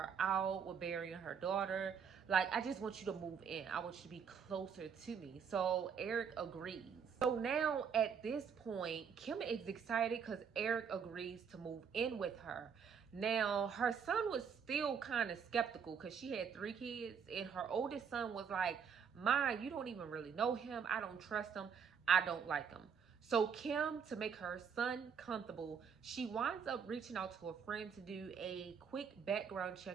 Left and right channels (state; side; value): quieter; left; 6.8 dB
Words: out with burying her daughter. Like, I just want you to move in. I want you to be closer to me. So Eric agrees. So now at this point, Kim is excited because Eric agrees to move in with her. Now, her son was still kind of skeptical because she had 3 kids, and her oldest son was like, Ma, you don't even really know him. I don't trust him. I don't like him. So Kim, to make her son comfortable, she winds up reaching out to a friend to do a quick background